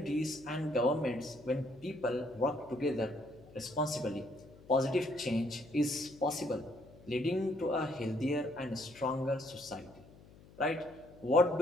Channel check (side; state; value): left; noise; hum, 22 dB below the sound